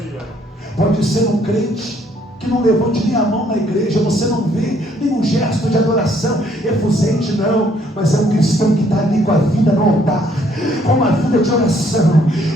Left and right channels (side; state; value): both; normal; correlation 0.66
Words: pode ser um crente que não levante nem a mão na igreja, você não vê nenhum gesto de adoração efusente, não, mas é um cristão que está ali com a vida no altar, com uma vida de oração.